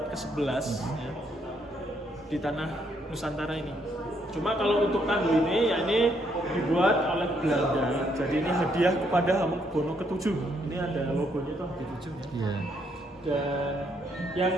ke-11 ya, di tanah Nusantara ini. Cuma kalau untuk tandu ini, ya ini dibuat oleh Belanda. Jadi ini hadiah kepada Hamengkubuwono ke-7. Ini ada logonya tuh di 7 ya. Iya. Dan yang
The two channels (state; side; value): normal; both; correlation 0.72